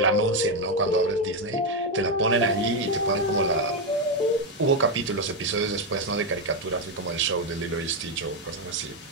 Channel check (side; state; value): both; normal; correlation 0.05